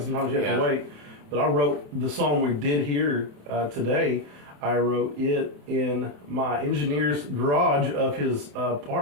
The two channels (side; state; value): left; late; 27 ms